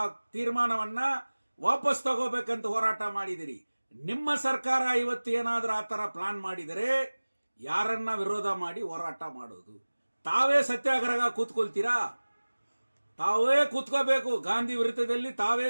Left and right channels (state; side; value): inverted; both; correlation -1.00